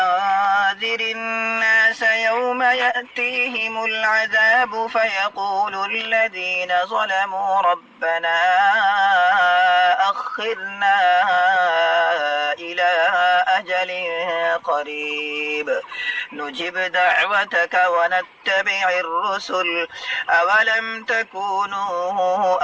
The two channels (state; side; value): identical; both; correlation 1.00